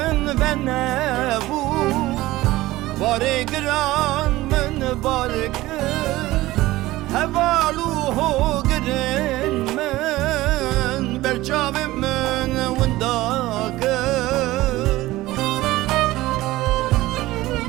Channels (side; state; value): left; quieter; 17.7 dB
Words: و نبو باره گران من بارکر هوالو گرن من برچاوی من ونداکر